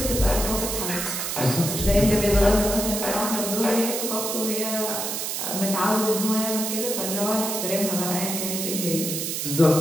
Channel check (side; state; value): right; noise; hiss, 3 dB below the sound